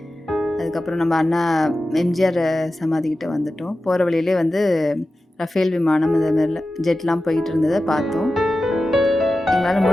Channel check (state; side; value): normal; both; correlation 0.94